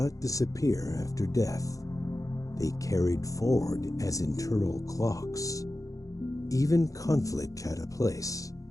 disappear after death. They carried forward as internal clocks. Even conflict had a place.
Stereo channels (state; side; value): late; right; 0.16 ms